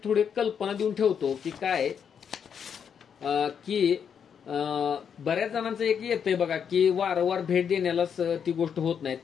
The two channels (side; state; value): right; quieter; 7.5 dB